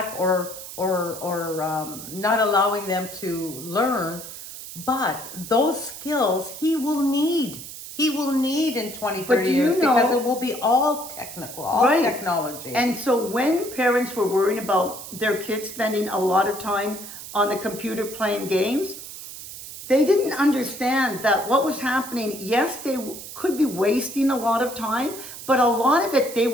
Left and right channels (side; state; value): right; noise; hiss, 12 dB below the sound